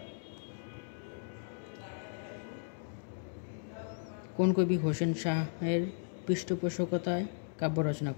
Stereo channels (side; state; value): right; silent; digital silence